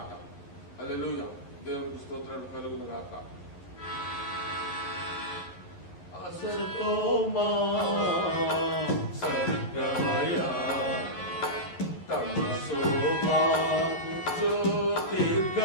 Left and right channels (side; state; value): right; late; 11 ms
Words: హల్లెలూయా, దేవునికి స్తోత్రాలు కలుగును గాక. అసతోమా సద్గమయ తమసోమా